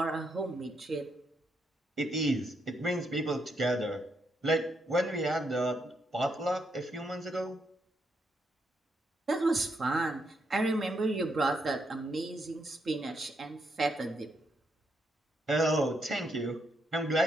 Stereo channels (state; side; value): normal; both; correlation 0.78